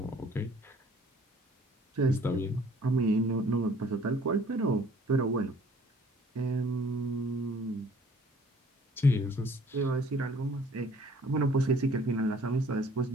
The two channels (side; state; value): both; normal; correlation 0.55